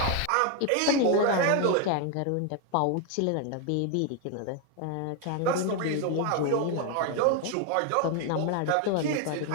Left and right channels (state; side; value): different; both; correlation 0.01